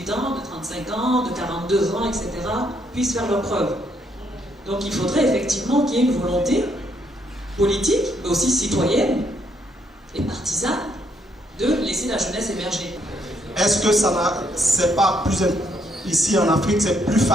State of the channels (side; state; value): both; normal; correlation 0.73